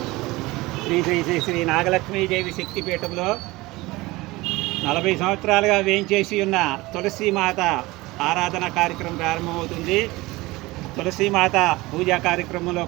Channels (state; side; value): quieter; left; 20.8 dB